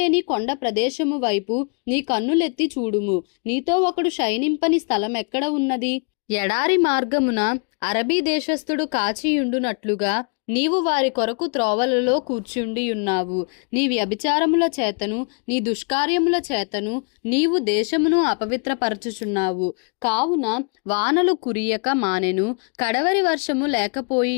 కొండ ప్రదేశము వైపు నీ కన్నులెత్తి చూడుము. నీతో ఒకడు శయనింపని స్థలం ఎక్కడ ఉన్నది? ఎడారి మార్గమున అరబీ దేశస్థుడు కాచియుండునట్లుగా నీవు వారి కొరకు త్రోవలలో కూర్చుండియున్నావు. నీ వ్యభిచారముల చేతను నీ దుష్కార్యముల చేతను నీవు దేశమును అపవిత్రపరచుచున్నావు. కావున వానలు కురియక మానెను, కడవరి వర్షము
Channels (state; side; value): quieter; right; 37.9 dB